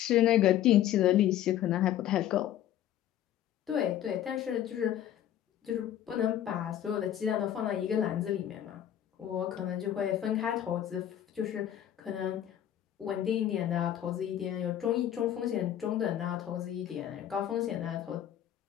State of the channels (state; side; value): quieter; right; 11.3 dB